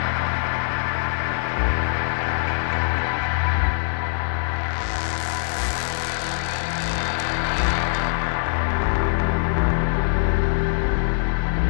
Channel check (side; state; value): right; silent; 63 dB below the other